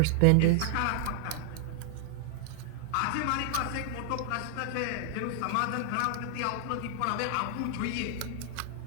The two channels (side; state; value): both; different; correlation -0.01